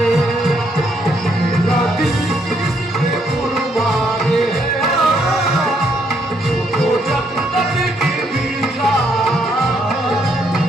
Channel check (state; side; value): normal; both; correlation 0.73